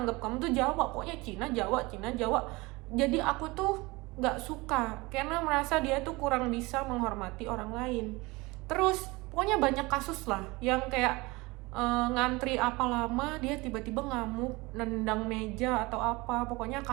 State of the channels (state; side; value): quieter; left; 23.3 dB